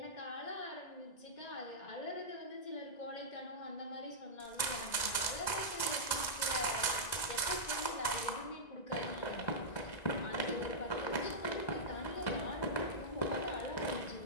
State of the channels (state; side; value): late; right; 1.9 ms